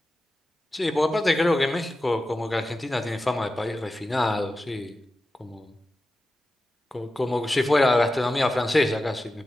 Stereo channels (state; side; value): normal; both; correlation 0.93